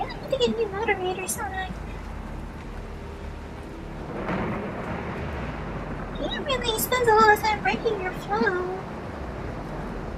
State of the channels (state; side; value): identical; both; correlation 1.00